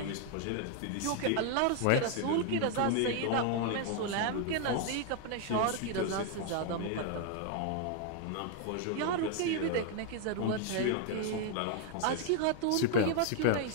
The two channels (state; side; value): different; both; correlation 0.00